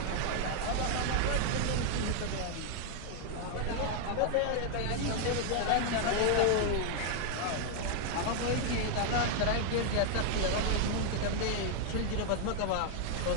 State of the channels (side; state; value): both; different; correlation 0.00